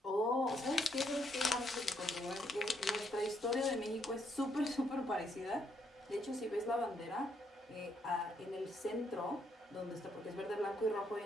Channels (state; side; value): normal; both; correlation 0.74